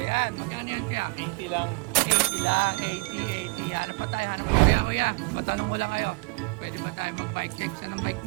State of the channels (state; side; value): quieter; left; 31.0 dB